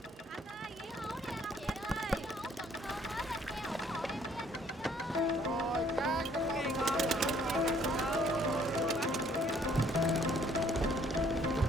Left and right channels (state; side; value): normal; both; correlation 0.62